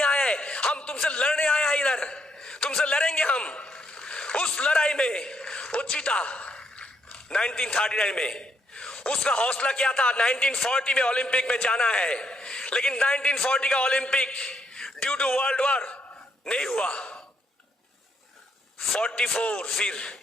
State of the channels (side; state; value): both; normal; correlation 0.75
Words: आए हैं, हम तुमसे लड़ने आए हैं, इधर तुमसे लड़ेंगे हम। उस लड़ाई में वो जीता 1939 में। उसका हौसला क्या था? 1940 में ओलंपिक में जाना है, लेकिन 1940 का Olympic due to world war नहीं हुआ। 44 फिर